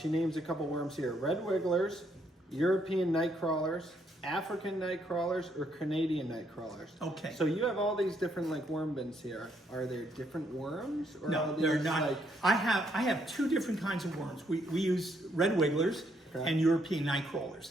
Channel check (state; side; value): normal; both; correlation 0.72